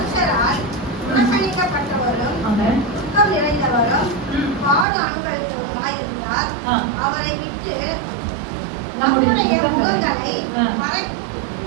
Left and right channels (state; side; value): drops out; left; at 4.9 s